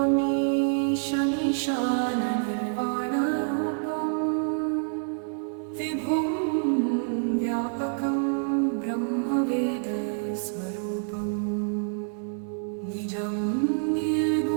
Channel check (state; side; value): silent; left; 55 dB below the other